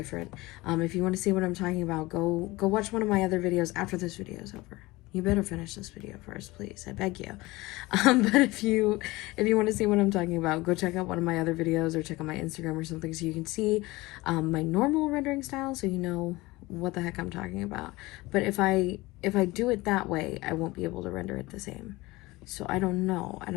If you want to see what I'm talking about, go watch one of my other videos after this video is over. you better finish this video first, please. I beg you. But if you want to see what I'm talking about, go check out one of my other videos or check out my Instagram or something so you can see my normal rendering style, so you know what the heck I'm talking about. But if I do it that way, I won't be able to render it the same. So I don't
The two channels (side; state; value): right; quieter; 20.9 dB